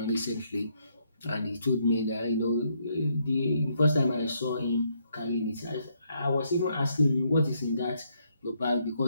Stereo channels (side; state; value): both; inverted; correlation -0.74